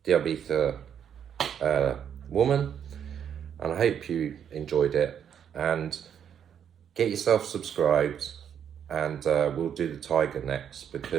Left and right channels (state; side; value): quieter; left; 8.6 dB